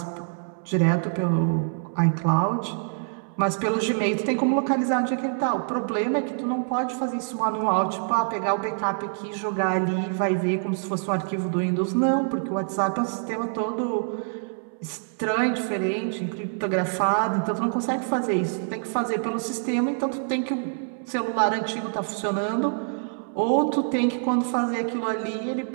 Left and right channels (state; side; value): silent; left; 61 dB below the other